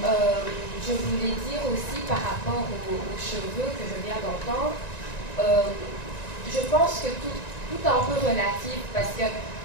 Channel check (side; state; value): right; late; 1.9 ms